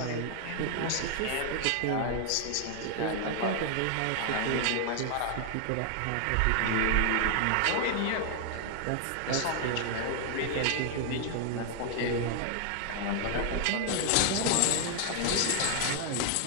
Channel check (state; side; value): different; both; correlation 0.00